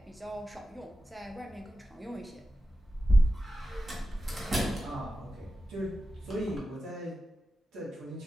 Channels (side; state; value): both; normal; correlation 0.92